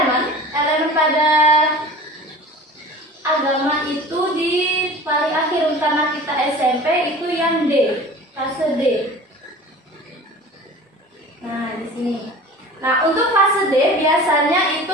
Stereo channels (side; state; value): both; normal; correlation 0.40